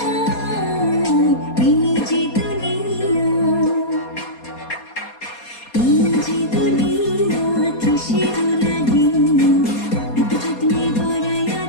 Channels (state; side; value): late; right; 4.2 ms